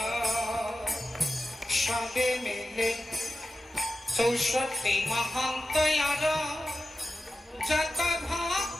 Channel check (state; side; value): normal; both; correlation 0.93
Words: সবে মিলে 64 মহান্ত আর যত